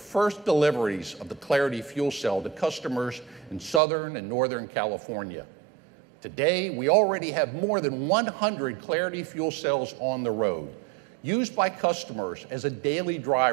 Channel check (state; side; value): drops out; left; at 3.8 s